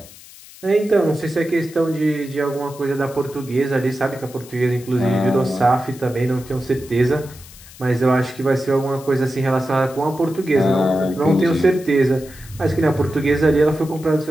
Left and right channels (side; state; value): left; noise; hiss, 20 dB below the sound